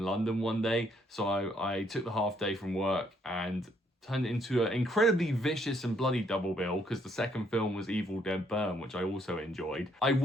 one day. So I took the half day from work and turned it into an incredibly vicious and bloody double bill, because the second film was Evil Dead Burn, which I also enjoyed. I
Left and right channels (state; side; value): normal; both; correlation 0.69